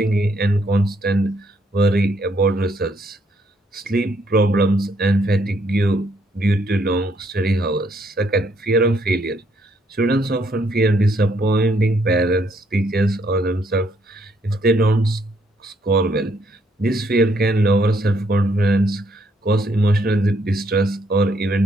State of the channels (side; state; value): both; normal; correlation 0.71